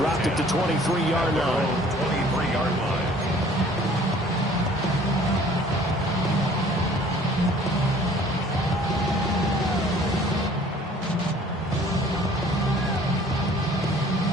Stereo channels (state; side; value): normal; both; correlation 0.53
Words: it to 23-yard line. 23-yard line.